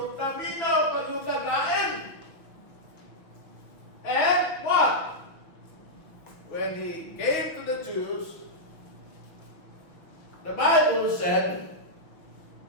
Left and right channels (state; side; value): late; right; 6.0 ms